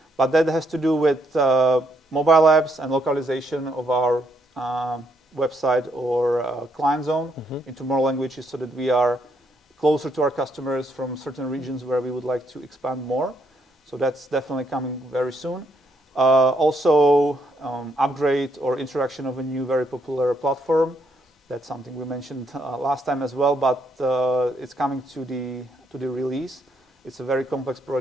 but that has to do with mobile apps and localization of our website or client zone into more languages, so that we are closer to our customers from certain regions where we would like to expand more. So that's definitely coming very soon. Also, upgrade or introduction of a new very popular platform. That's something we mentioned last time as well, but it's coming to the release. It's a very complex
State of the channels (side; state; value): both; normal; correlation 0.74